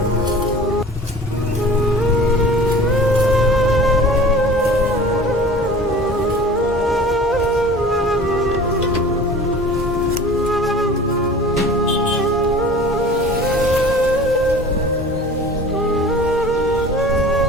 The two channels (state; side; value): normal; both; correlation 0.42